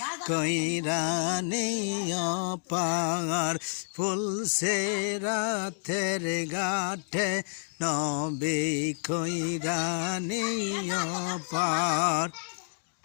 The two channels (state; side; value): silent; right; digital silence